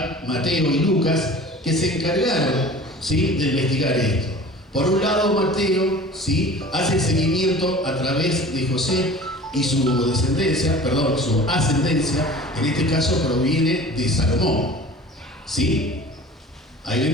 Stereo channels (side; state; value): both; normal; correlation 0.42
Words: y Lucas, que se encargaron, ¿sí?, de investigar esto. Por un lado, Mateo, ¿sí?, hace el seguimiento a través de José y su descendencia, su ascendencia, en este caso proviene de Salomón, ¿sí? Ahí